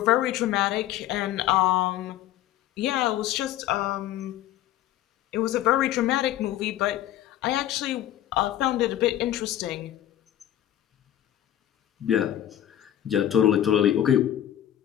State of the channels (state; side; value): quieter; right; 12.1 dB